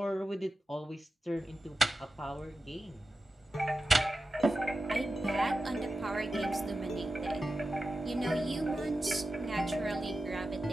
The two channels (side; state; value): both; normal; correlation 0.92